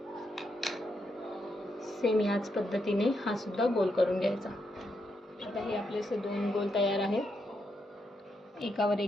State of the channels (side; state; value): both; normal; correlation 0.81